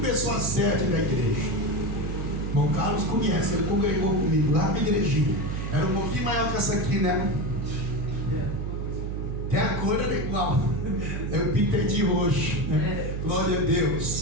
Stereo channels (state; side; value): noise; right; hum, 3 dB below the sound